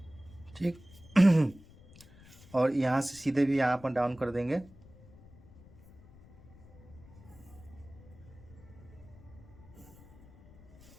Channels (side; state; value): left; noise; rumble, 22 dB below the sound